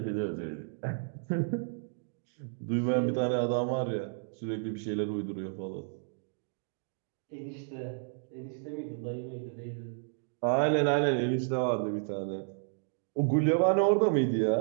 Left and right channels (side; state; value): left; silent; digital silence